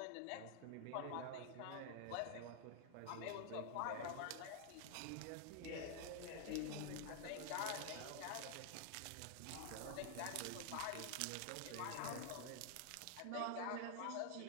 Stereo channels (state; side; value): different; both; correlation 0.00